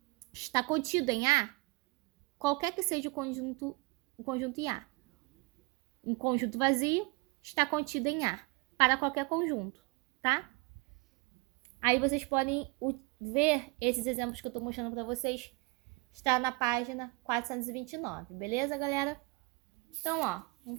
está contido em A, qualquer que seja o conjunto em A, um conjunto vazio está contido em A, para qualquer conjunto, tá? Aí vocês podem ver esses exemplos que eu estou mostrando para vocês, está na página 429, beleza, galera? Então, ó,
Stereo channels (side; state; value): left; quieter; 26.5 dB